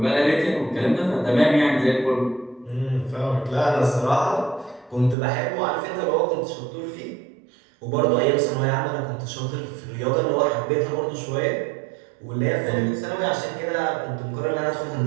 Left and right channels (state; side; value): drops out; left; at 5.2 s